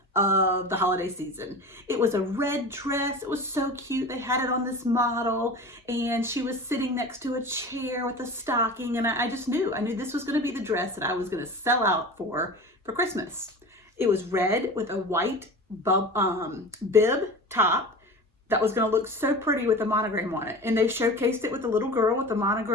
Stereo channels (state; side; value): normal; both; correlation 0.34